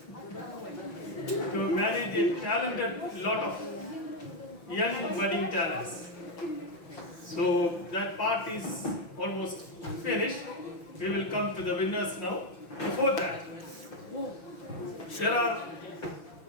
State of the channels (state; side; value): late; right; 5.9 ms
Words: to manage a talented lot of young budding talents. So that part is almost finished. We will come to the winners now. Before that, there are